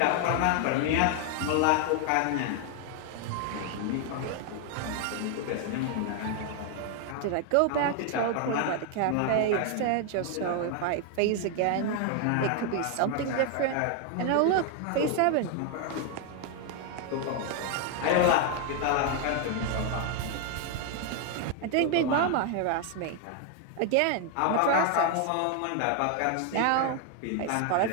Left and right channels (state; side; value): different; both; correlation 0.00